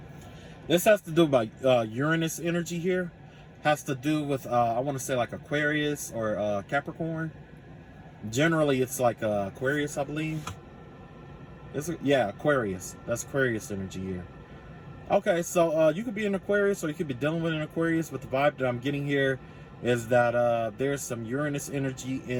This has to do with Uranus energy here. Has to do with I want to say like Aquarius or Capricorn. Generally, it's like Aquarius, I believe. Yeah, Aquarius. That's Aquarius energy here. Okay, so you could be an Aquarius, or you could be dealing with an Aquarius, but the vibe that I'm getting here is that there's some Uranus energy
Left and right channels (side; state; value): both; identical; correlation 1.00